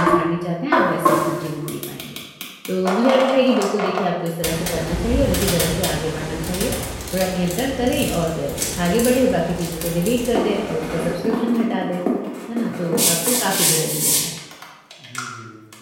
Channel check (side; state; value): both; identical; correlation 1.00